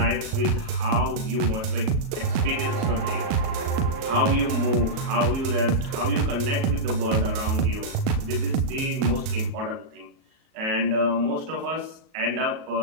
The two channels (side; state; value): left; late; 37 ms